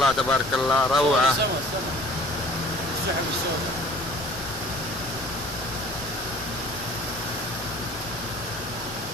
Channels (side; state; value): both; normal; correlation 0.49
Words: تبارك الله روعة.